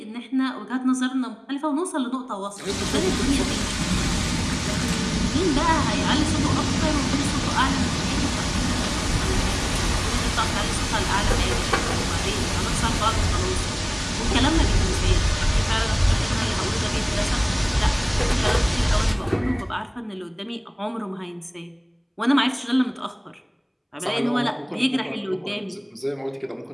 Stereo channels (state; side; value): identical; both; correlation 1.00